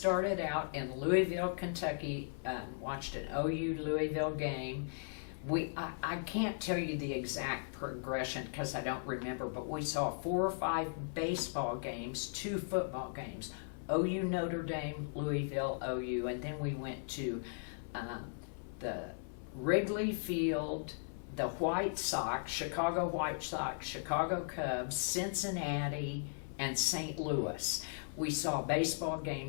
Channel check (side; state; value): right; silent; 53 dB below the other